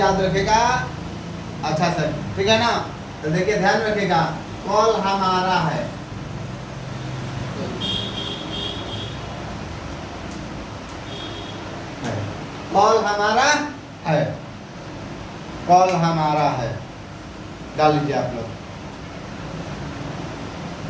रखेगा अच्छा सर, ठीक है ना। तो देखिए ध्यान रखिएगा, कल हमारा है। कल हमारा है, कल हमारा है, डाल लीजिए आप लोग।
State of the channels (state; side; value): identical; both; correlation 1.00